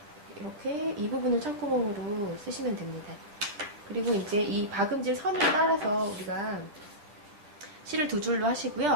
이렇게 이 부분을 창구멍으로 쓰시면 됩니다. 그리고 이제 이 박음질 선을 따라서 우리가 실을 두 줄로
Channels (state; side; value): late; left; 10 ms